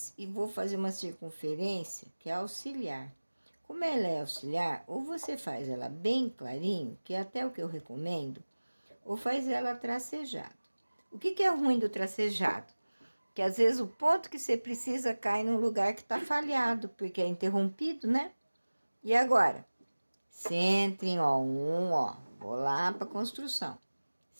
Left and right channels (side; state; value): both; inverted; correlation -1.00